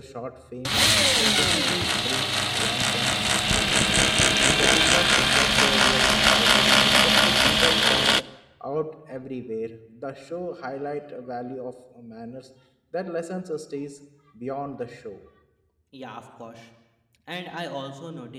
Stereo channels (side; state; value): both; identical; correlation 1.00